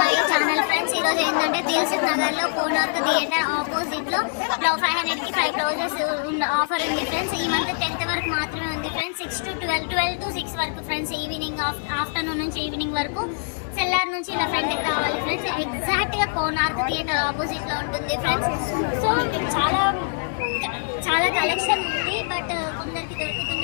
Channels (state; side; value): silent; right; 60 dB below the other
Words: channel friends. ఈరోజు ఏంటంటే దిల్సుఖ్ నగర్ లో కోనార్క్ థియేటర్ ఆపోజిట్ లో 500 కి 5 రోజెస్ ఆఫర్ ఉంది ఫ్రెండ్స్. ఈ మంత్ 10th వరకు మాత్రమే ఉంది ఫ్రెండ్స్. 6 to 12 to 6 వరకు ఫ్రెండ్స్. ఈవినింగ్ ఆఫ్టర్నూన్ నుంచి ఈవినింగ్ వరకు సెల్లార్ నుంచి ఇలా ఫ్రెండ్కి రావాలి ఫ్రెండ్స్. ఎగ్జాక్ట్ గా కోనార్క్ థియేటర్ ఆపోజిట్ లో ఉంటుంది ఫ్రెండ్స్. సో ఇక్కడ చాలా కలెక్షన్ ఉంది, బట్ కొందరికి